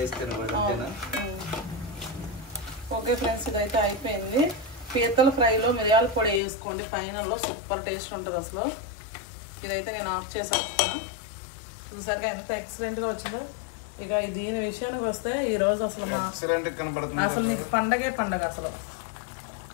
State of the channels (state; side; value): drops out; right; at 6.4 s